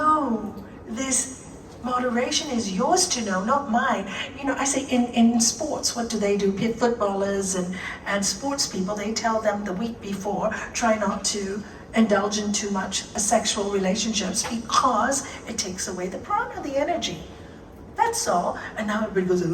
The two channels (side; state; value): both; identical; correlation 1.00